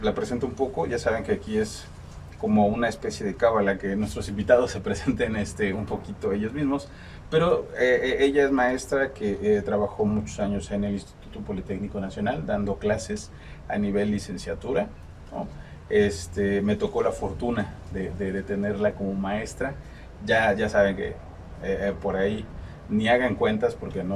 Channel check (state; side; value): identical; both; correlation 1.00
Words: la presento un poco, ya saben que aquí es como una especie de cábala que nuestros invitados se presenten un poquito ellos mismos, pero ella es maestra que trabajó muchos años en el Instituto Politécnico Nacional dando clases a nivel licenciatura, ¿no? Me tocó la fortuna de tenerla como maestra. Ya saben que por ahí ni hagan cuentas porque